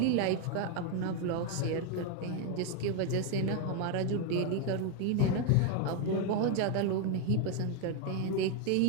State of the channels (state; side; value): different; both; correlation 0.01